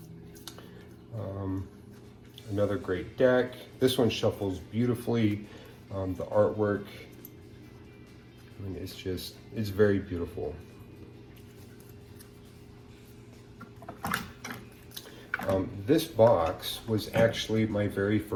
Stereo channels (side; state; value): both; identical; correlation 1.00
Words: Another great deck. This one shuffles beautifully. The artwork, I mean, it's very beautiful. This box was actually my very